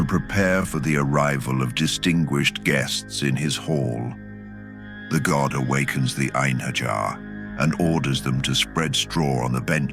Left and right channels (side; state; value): both; identical; correlation 1.00